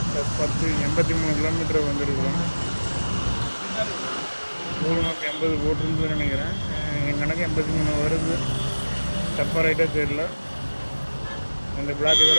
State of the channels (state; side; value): inverted; both; correlation -1.00